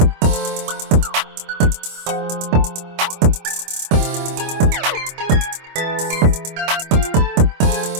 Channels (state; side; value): late; left; 25 ms